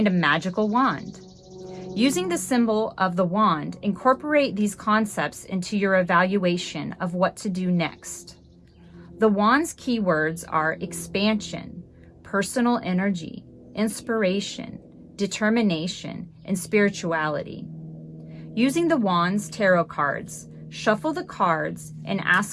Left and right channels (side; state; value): both; identical; correlation 1.00